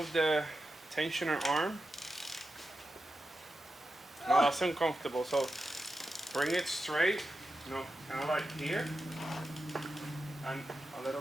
the tensioner arm. No, that's uncomfortable. So bring it straight, kind of like here. And a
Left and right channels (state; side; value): normal; both; correlation 0.90